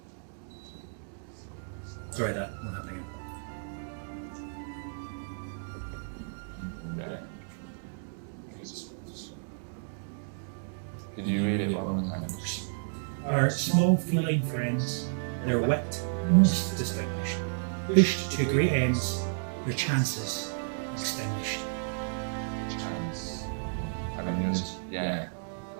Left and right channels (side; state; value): left; silent; digital silence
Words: Sorry, that won't happen again. Okay. Could you read it one more time? Our small feline friends, their wit most distinguished, pushed to great ends, their chances extinguished. Chance. I mean, yeah.